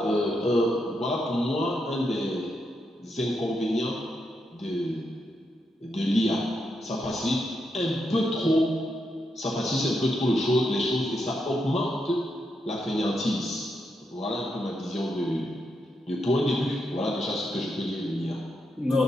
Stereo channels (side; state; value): both; normal; correlation 0.82